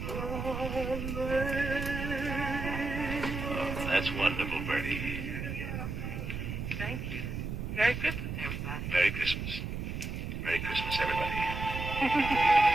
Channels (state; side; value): noise; right; rumble, 5 dB below the sound